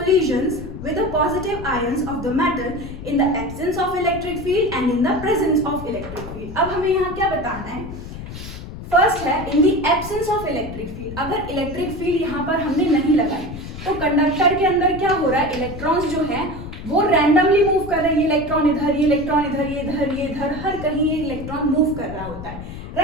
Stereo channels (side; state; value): left; noise; rumble, 11 dB below the sound